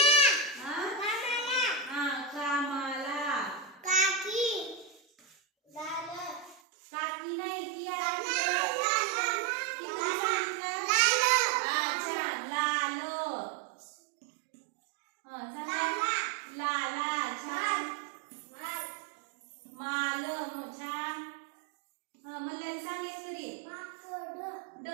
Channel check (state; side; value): drops out; left; at 6.6 s